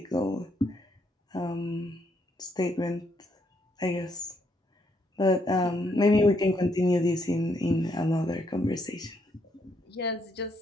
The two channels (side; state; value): both; normal; correlation 0.74